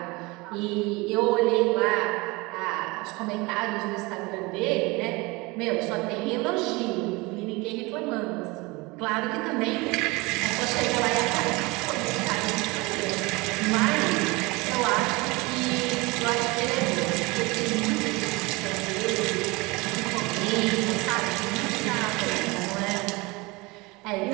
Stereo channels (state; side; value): quieter; left; 24.4 dB